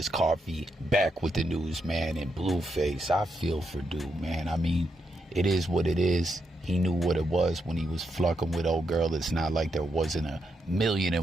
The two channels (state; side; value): normal; both; correlation 0.82